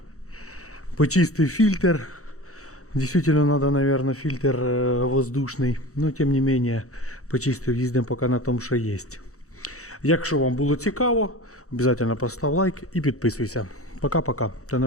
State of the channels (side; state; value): right; late; 0.65 ms